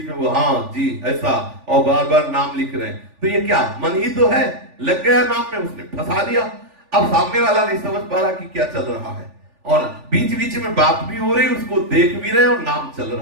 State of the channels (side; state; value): left; late; 3.4 ms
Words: में वो हाँ जी ऐसा और बार बार नाम लिख रहे हैं। तो ये क्या मन ही तो है, लग गया नाम में, उसने फंसा दिया। अब सामने वाला नहीं समझ पा रहा कि क्या चल रहा है और बीच बीच में बात भी हो रही, उसको देख भी रहे और नाम चल